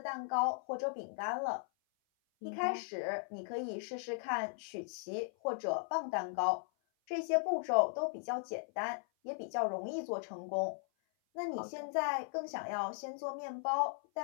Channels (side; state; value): right; silent; 53 dB below the other